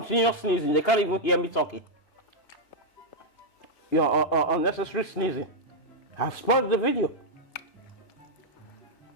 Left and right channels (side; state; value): right; late; 2.8 ms